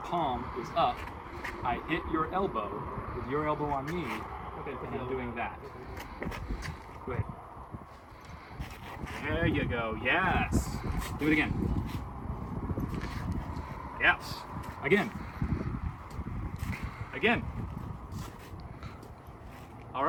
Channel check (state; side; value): identical; both; correlation 1.00